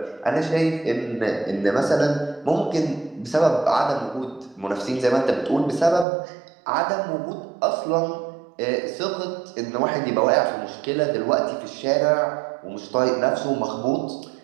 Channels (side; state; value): left; drops out; at 6.1 s